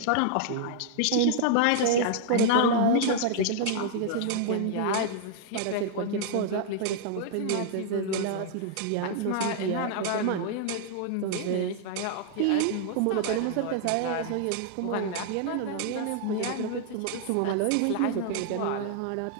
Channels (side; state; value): both; different; correlation 0.00